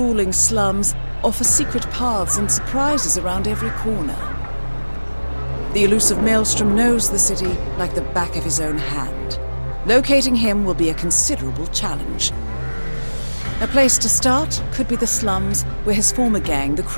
slums offer secret paths and surprises around every corner. The elusive Maelstrom knows the city like the back of his own hand. Locating him will be a considerable challenge. A place to start could be the slums, where his former gang, the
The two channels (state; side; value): inverted; both; correlation -1.00